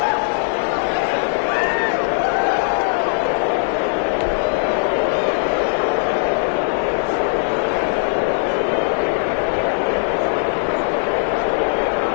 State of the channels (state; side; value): silent; right; digital silence